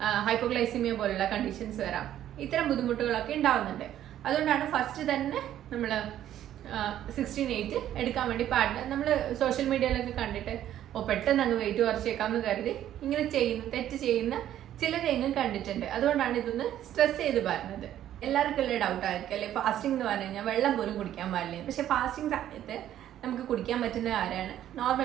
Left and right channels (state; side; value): quieter; left; 11.7 dB